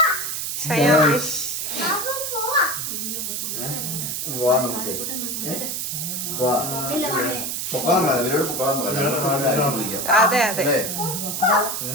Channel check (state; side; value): noise; right; hiss, 3 dB below the sound